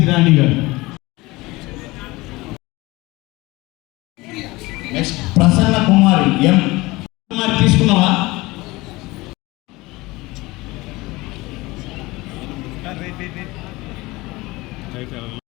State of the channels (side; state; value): right; quieter; 21.4 dB